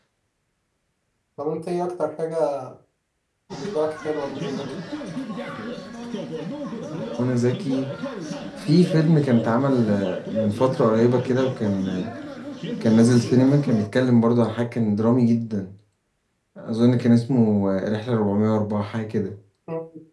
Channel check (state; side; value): identical; both; correlation 1.00